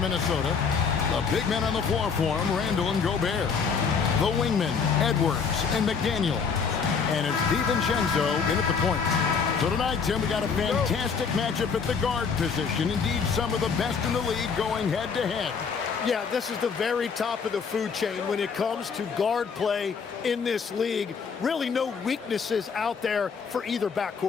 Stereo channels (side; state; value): right; quieter; 5.8 dB